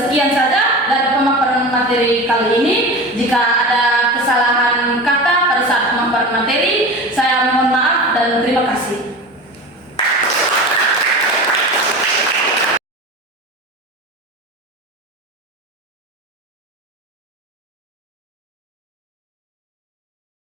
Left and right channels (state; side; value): normal; both; correlation 0.30